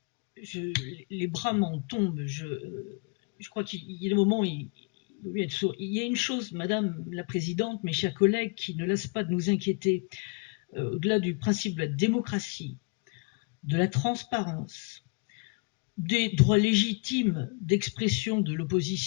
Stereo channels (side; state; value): right; quieter; 33.4 dB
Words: Les bras m'en tombent. Je crois qu'il y a des moments où il vaut mieux être sourd. Il y a une chose, Madame la Présidente, mes chers collègues, qui ne lasse pas de nous inquiéter, au-delà du principe de la démocratie, de la transparence, des droits légitimes d'expression de